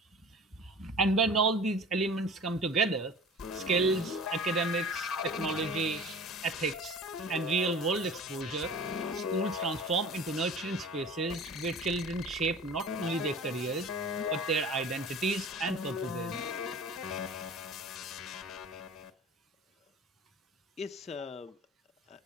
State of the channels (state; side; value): normal; both; correlation 0.41